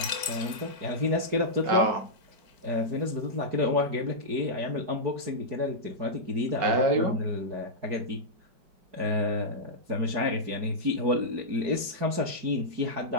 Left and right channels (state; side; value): late; left; 4.8 ms